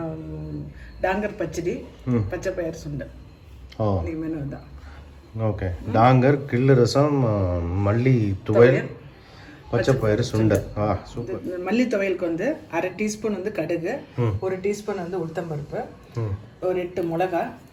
டாங்கர் பச்சடி, பச்சை பயிர் சுண்டல். இன்னைக்கு மெனு தான். ஓகே, டாங்கர், கிள்ளு ரசம், மல்லி துவையல், பச்சை பயிறு சுண்டல். சூப்பர். மல்லி துவையலுக்கு வந்து 1/2 டீஸ்பூன் வந்து கடுகு, 1 டீஸ்பூன் வந்து உளுத்தம்பருப்பு, ஒரு 8 மிளகா,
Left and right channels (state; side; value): identical; both; correlation 1.00